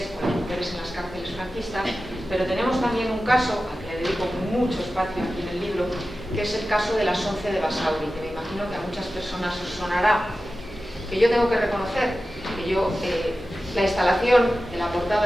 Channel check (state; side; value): normal; both; correlation 0.94